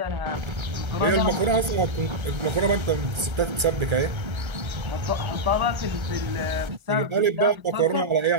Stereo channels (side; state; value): left; late; 1.4 ms